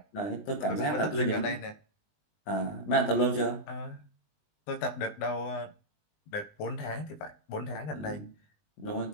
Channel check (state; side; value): late; right; 20 ms